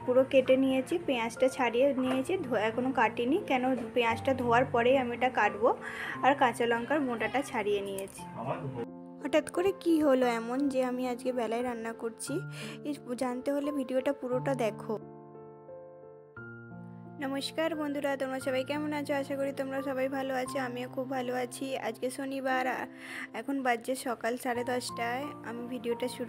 পুরো কেটে নিয়েছি, পেঁয়াজটা ছাড়িয়ে নিয়েছি, এখনও কাটিনি কেন পেঁয়াজটা ধোয়ার পরেই আমি এটা কাটবো। আর কাঁচা লঙ্কার মোটাটা ছাড়িয়ে নিয়েছি। হঠাৎ করে কি হলো এমন যে আমি আজকে বেলায় রান্না করছি, জানতে হলে ভিডিওটা পুরোটা দেখো। নমস্কার বন্ধুরা, তোমরা সবাই কেমন আছো? আশা করি তোমরা সবাই ভালো আছো, আমিও খুব ভালো আছি। আজকে শনিবার, এখন বাজছে সকাল 10:30টায় আমি ভিডিওটা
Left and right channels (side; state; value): both; identical; correlation 1.00